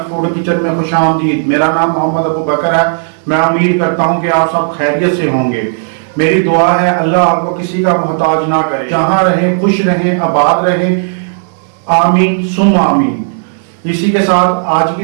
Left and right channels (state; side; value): silent; left; digital silence